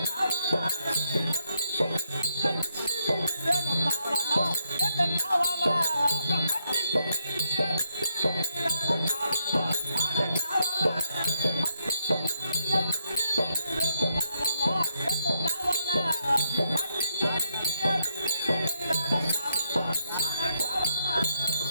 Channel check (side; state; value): both; inverted; correlation -0.78